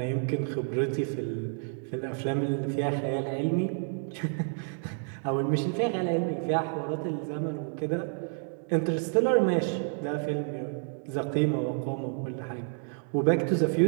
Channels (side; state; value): left; silent; 57 dB below the other